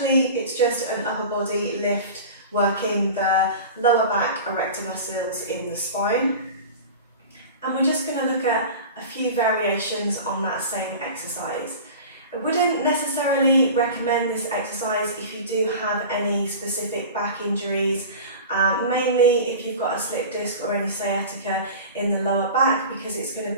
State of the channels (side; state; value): both; inverted; correlation -0.34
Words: it's just an upper body lift working the lower back erector muscles in the spine. And we're just going to look at a few variations on that same exercise. I wouldn't necessarily recommend this exercise if you do have any specific back injuries, mainly if you've got a slip disc or any sciatica in the lower back, because it's going to